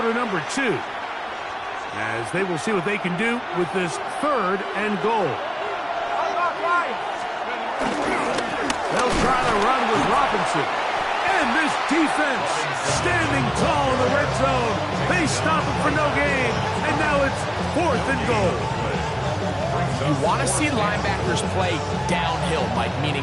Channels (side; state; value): both; identical; correlation 1.00